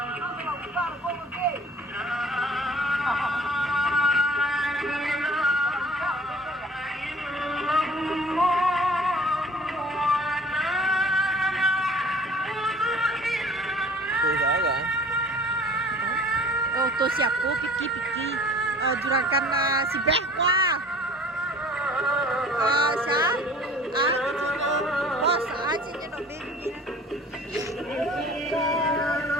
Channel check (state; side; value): normal; both; correlation 0.48